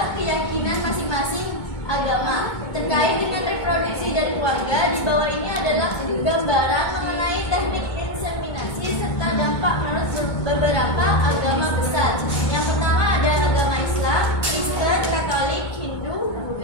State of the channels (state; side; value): late; right; 2.2 ms